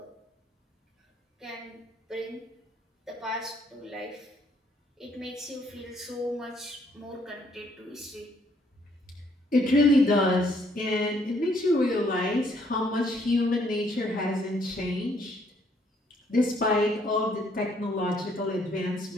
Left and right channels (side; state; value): both; normal; correlation 0.67